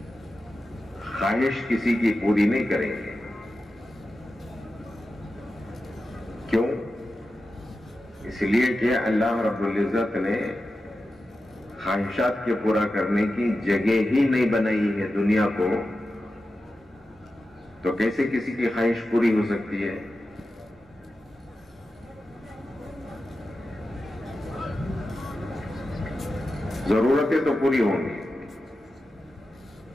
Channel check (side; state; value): both; normal; correlation 0.92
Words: خواہش کسی کی پوری نہیں کریں گے۔ کیوں؟ اس لیے کہ اللہ رب العزت نے خواہشات کے پورا کرنے کی جگہ ہی نہیں بنائی ہے دنیا کو، تو کیسے کسی کی خواہش پوری ہو سکتی ہے؟ ضرورتیں تو پوری ہوں گی،